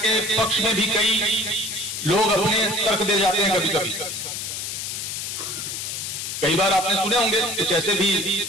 पक्ष में भी कई लोग अपने तर्क दे जाते हैं। कभी कभी कई बार आपने सुने होंगे कुछ ऐसे भी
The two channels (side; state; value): left; noise; hiss, 5 dB below the sound